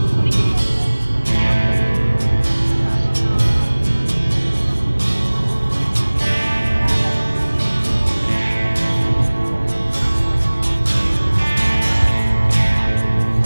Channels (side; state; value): both; inverted; correlation -1.00